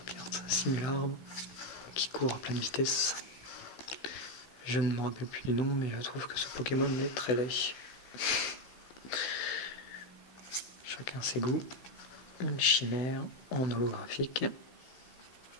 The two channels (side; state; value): right; late; 16 ms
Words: carte. Simularbe qui court à pleine vitesse. Je ne me rappelle plus du nom, mais je trouve que ce Pokémon est très laid. Chacun ses goûts. Une chimère en holographique.